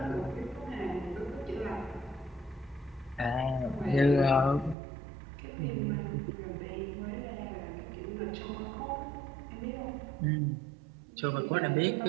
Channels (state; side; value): drops out; left; at 4.8 s